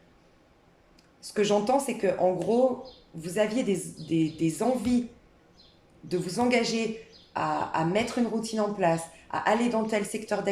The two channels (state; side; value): identical; both; correlation 1.00